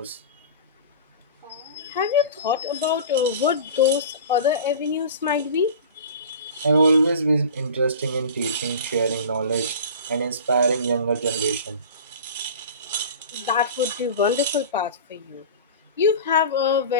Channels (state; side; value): inverted; both; correlation -0.37